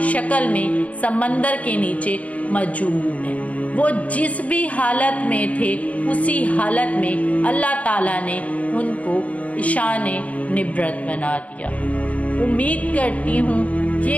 شکل میں سمندر کے نیچے موجود ہیں۔ وہ جس بھی حالت میں تھے، اسی حالت میں اللہ تعالیٰ نے ان کو نشان نبرت بنا دیا۔ امید کرتی ہوں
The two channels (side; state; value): right; late; 0.068 ms